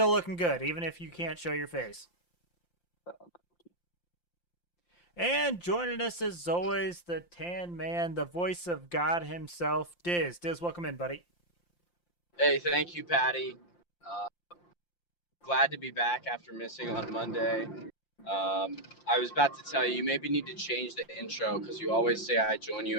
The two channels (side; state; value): right; late; 5.8 ms